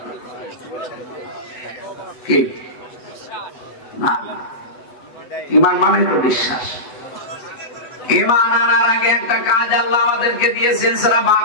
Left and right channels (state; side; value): late; right; 8.1 ms